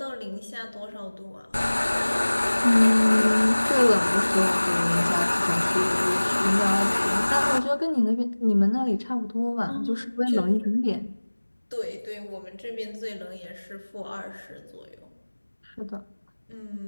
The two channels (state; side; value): inverted; both; correlation -1.00